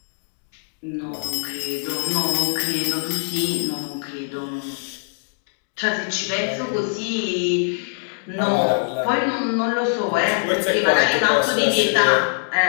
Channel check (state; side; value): silent; right; digital silence